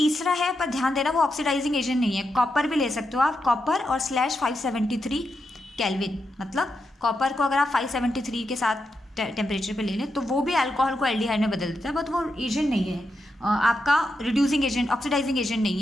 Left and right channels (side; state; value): both; normal; correlation 0.85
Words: है, पर ध्यान देना वो ऑक्सीडाइजिंग एजेंट नहीं है। कॉपर भी ले सकते हो आप, कॉपर और /573 केल्विन, मतलब कॉपर को अगर आप 573 के साथ टेम्परेचर पे ले लें तो वो भी अल्कोहल को एल्डिहाइड में बदल देता है, बट वो एजेंट नहीं है आपका, रिड्यूसिंग एजेंट, ऑक्सीडाइजिंग एजेंट नहीं